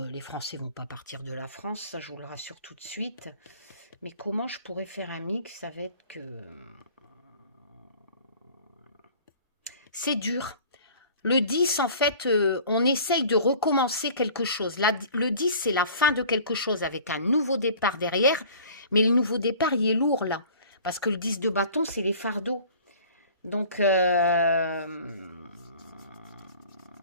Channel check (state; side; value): inverted; both; correlation -0.47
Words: Français vont pas partir de la France, ça je vous le rassure tout de suite. Mais comment je pourrais faire un mix avec... C'est dur. Le 10, en fait, on essaye de recommencer quelque chose. Là, le 10, c'est la fin de quelque chose avec un nouveau départ derrière. Mais le nouveau départ, il est lourd là. Parce que le 10 de bâton, c'est les fardeaux. Donc,